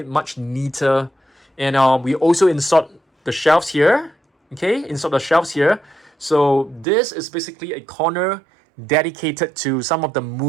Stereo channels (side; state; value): left; drops out; at 6.9 s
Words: much neater. And we also installed the shelves here. Okay, installed the shelves here. So this is basically a corner dedicated to some of the